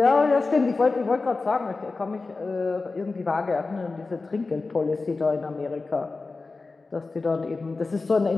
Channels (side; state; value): right; quieter; 3.8 dB